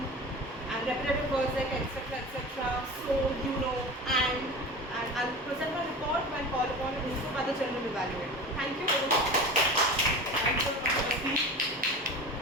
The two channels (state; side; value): normal; both; correlation 0.32